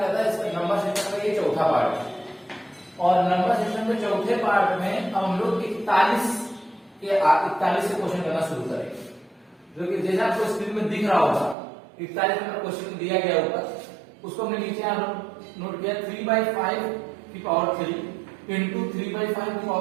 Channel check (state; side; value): drops out; left; at 11.6 s